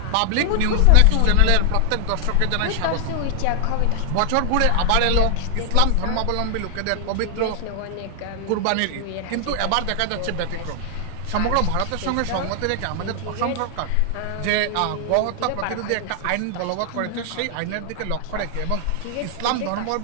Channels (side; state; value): both; different; correlation 0.00